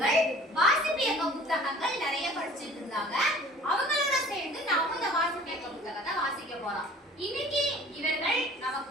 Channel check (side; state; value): both; normal; correlation 0.47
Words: வாசிப்பியக்க புத்தகங்கள் நிறைய படிச்சுட்டு இருந்தாங்க. அவங்களோட சேர்ந்து நாம இந்த வாசிப்பியக்க புத்தகத்தை வாசிக்க போறோம். இன்னைக்கு இவர்கள் நமக்கு